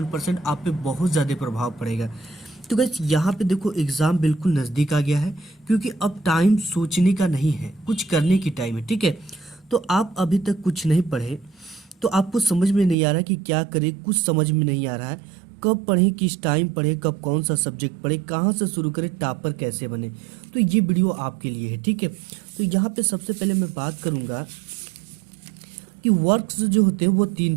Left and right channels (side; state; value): left; drops out; at 13.0 s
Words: आप पे बहुत ज़्यादा प्रभाव पड़ेगा। तो गाइस, यहाँ पे देखो एग्जाम बिल्कुल नज़दीक आ गया है, क्योंकि अब टाइम सोचने का नहीं है, कुछ करने की टाइम है। ठीक है, तो आप अभी तक कुछ नहीं पढ़े तो आपको समझ में नहीं आ रहा कि क्या करें, कुछ समझ में नहीं आ रहा है। कब पढ़ें, किस टाइम पढ़ें, कब कौन सा सब्जेक्ट पढ़ें, कहाँ से शुरू करें, टॉपर कैसे बने, तो ये वीडियो आपके लिए है। ठीक है, तो यहाँ पे सबसे पहले मैं बात करूँगा कि वर्क्स जो होते हैं वो